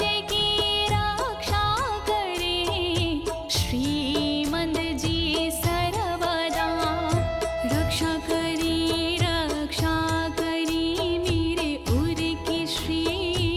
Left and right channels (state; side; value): identical; both; correlation 1.00